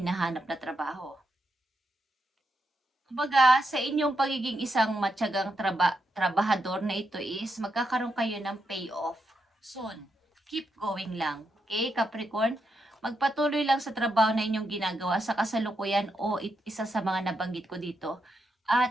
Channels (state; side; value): normal; both; correlation 0.83